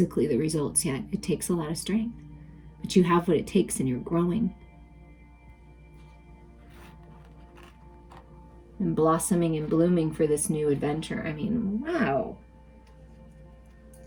the results yet. It takes a lot of strength, but you have what it takes and you're growing and blossoming and blooming for this new adventure. I mean, wow.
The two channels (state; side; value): identical; both; correlation 1.00